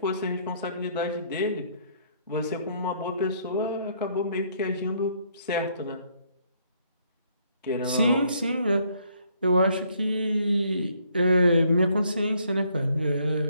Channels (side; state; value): both; inverted; correlation -0.68